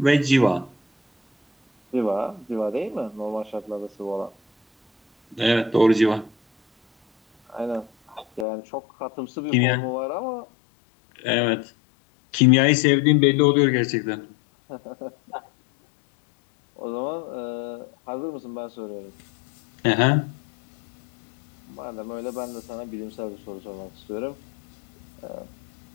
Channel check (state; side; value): drops out; right; at 8.5 s